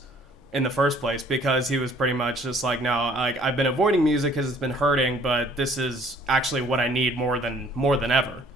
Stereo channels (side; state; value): both; normal; correlation 0.57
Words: in the first place, because he was pretty much just like, no, I've been avoiding music because it's been hurting, but this is actually what I need more than ever.